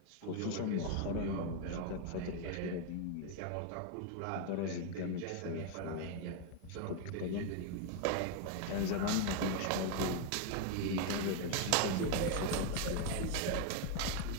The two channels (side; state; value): both; different; correlation 0.01